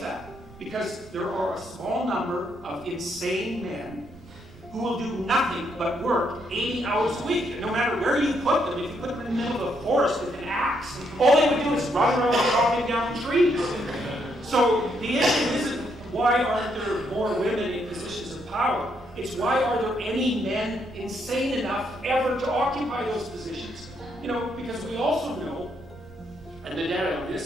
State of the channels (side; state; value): right; noise; rumble, 21 dB below the sound